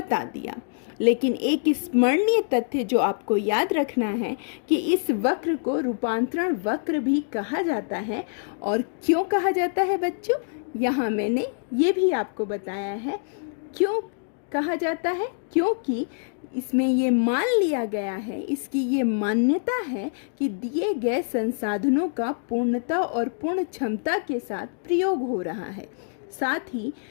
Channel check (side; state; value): right; silent; digital silence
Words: दिया। लेकिन एक स्मरणीय तथ्य जो आपको याद रखना है कि इस वक्र को रूपांतरण वक्र भी कहा जाता है। और क्यों कहा जाता है बच्चों? यहाँ मैंने ये भी आपको बताया है क्यों कहा जाता है। क्योंकि इसमें ये मान लिया गया है, इसकी ये मान्यता है कि दिए गए संसाधनों का पूर्णता और पूर्ण क्षमता के साथ प्रयोग हो रहा है। साथ ही